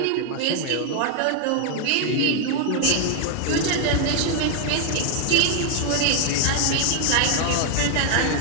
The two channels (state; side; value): different; both; correlation 0.00